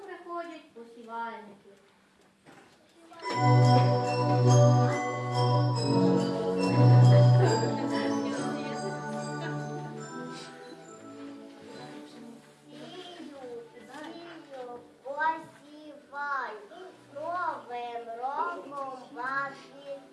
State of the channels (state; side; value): identical; both; correlation 1.00